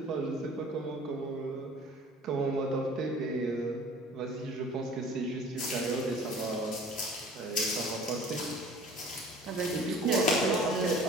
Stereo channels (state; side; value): normal; both; correlation 0.47